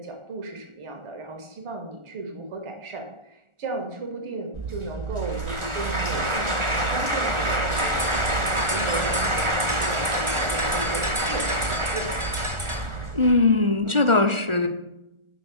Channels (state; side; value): late; left; 1.4 ms